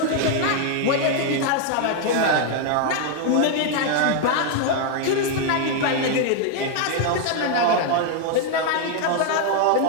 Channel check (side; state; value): both; different; correlation 0.00